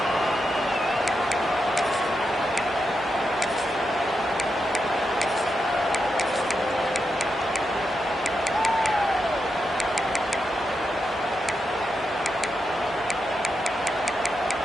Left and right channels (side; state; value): both; normal; correlation 0.86